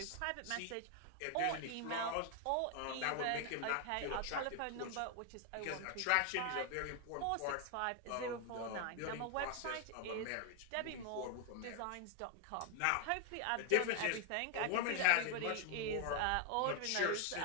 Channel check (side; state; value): both; different; correlation 0.00